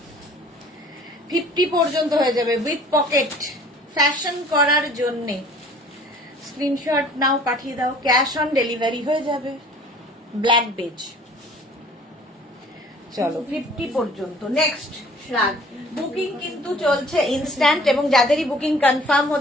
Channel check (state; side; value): normal; both; correlation 0.51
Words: 50 পর্যন্ত হয়ে যাবে উইথ পকেট, ফ্যাশন করার জন্য। স্ক্রিনশট নাও, পাঠিয়ে দাও, ক্যাশ অন ডেলিভারি হয়ে যাবে। Black beige. চলো 50 পর্যন্ত। নেক্সট শ্রাগ, বুকিং কিন্তু চলছে ইনস্ট্যান্ট, এবং যাদেরই বুকিং কনফার্ম